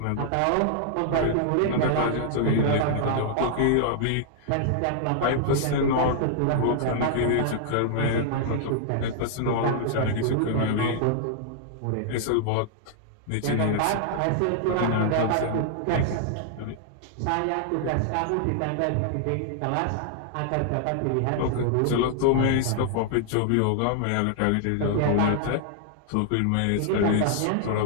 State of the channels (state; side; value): different; both; correlation -0.01